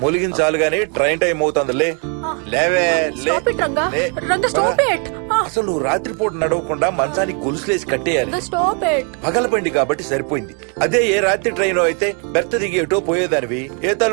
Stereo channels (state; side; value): quieter; left; 38.1 dB